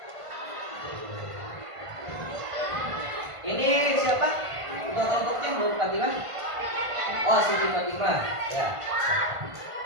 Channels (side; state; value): left; late; 1.5 ms